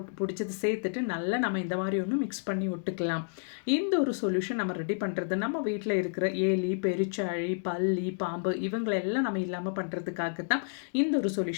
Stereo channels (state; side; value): silent; right; digital silence